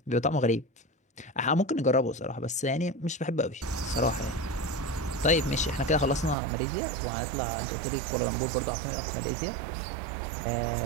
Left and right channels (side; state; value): left; drops out; at 6.4 s